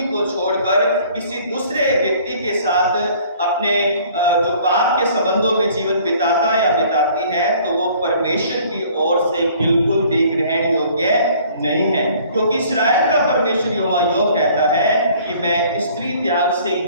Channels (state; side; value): inverted; both; correlation -0.54